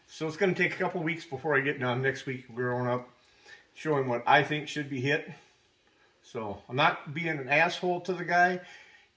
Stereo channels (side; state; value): both; identical; correlation 1.00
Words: So it's going to take a couple weeks before I get done. Next week we're going up, showing what I think should be hit. So I'm not being an asshole to the guy.